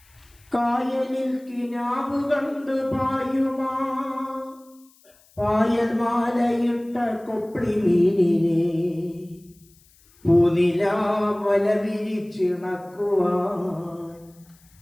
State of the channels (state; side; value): noise; left; hiss, 30 dB below the sound